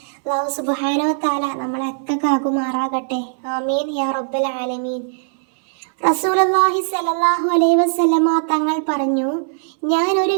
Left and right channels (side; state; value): left; silent; 62 dB below the other